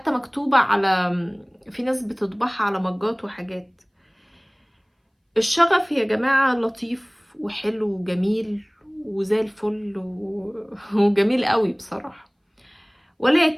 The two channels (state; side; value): identical; both; correlation 1.00